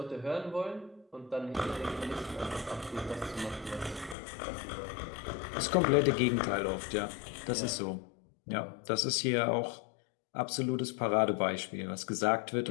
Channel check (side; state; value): right; drops out; at 4.2 s